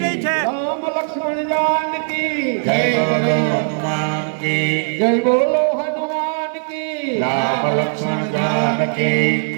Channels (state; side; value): silent; left; digital silence